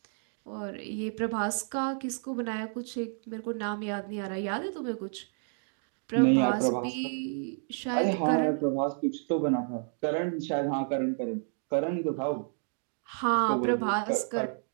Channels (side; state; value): left; silent; 57 dB below the other